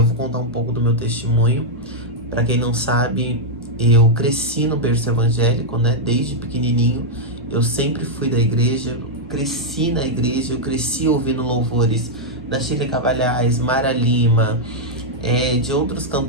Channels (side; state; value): both; normal; correlation -0.04